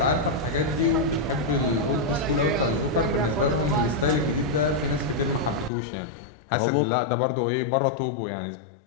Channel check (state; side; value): drops out; right; at 5.7 s